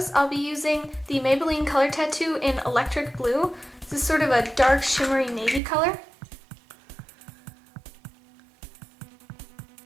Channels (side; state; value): left; drops out; at 5.6 s